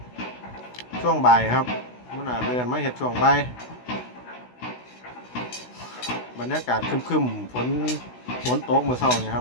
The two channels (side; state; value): right; late; 16 ms